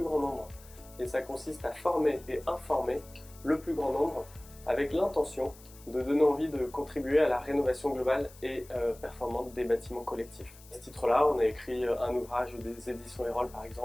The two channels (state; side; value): noise; left; hiss, 22 dB below the sound